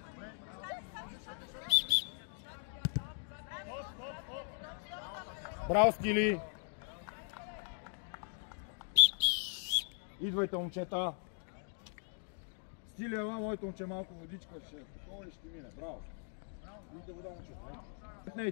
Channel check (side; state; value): right; silent; 52 dB below the other